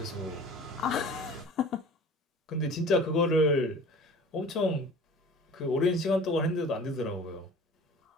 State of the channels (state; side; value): normal; both; correlation 0.44